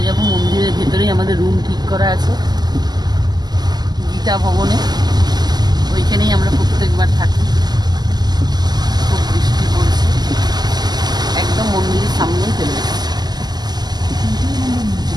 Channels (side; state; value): left; late; 0.20 ms